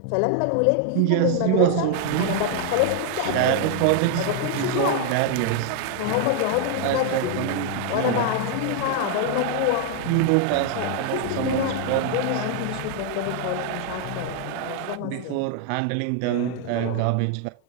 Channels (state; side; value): different; both; correlation 0.00